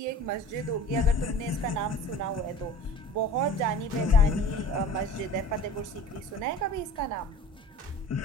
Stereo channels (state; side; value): normal; both; correlation 0.41